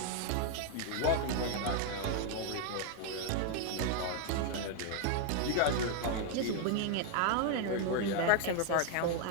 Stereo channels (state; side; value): different; both; correlation 0.00